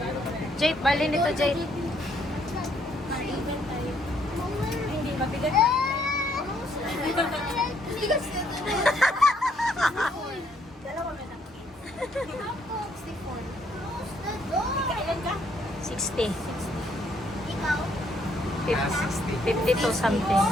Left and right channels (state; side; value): normal; both; correlation 0.69